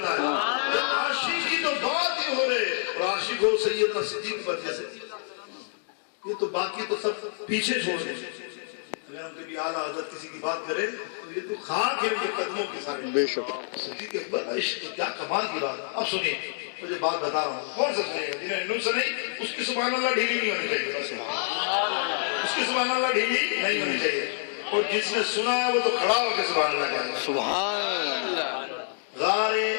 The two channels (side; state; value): right; silent; digital silence